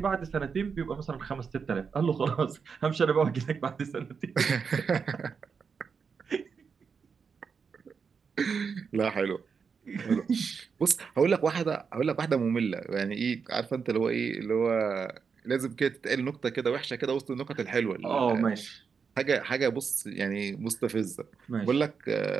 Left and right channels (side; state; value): left; quieter; 5.9 dB